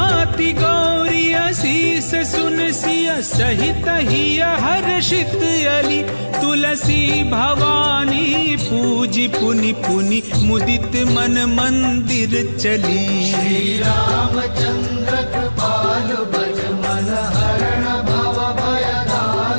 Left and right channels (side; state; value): both; inverted; correlation -1.00